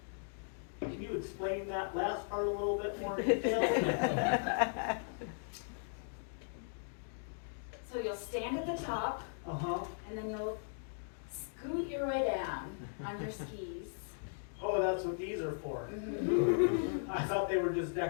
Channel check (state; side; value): silent; right; digital silence